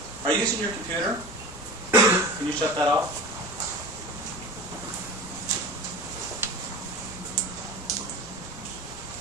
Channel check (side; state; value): both; normal; correlation 0.34